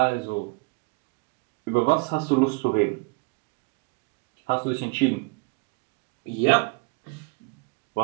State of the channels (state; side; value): quieter; left; 29.5 dB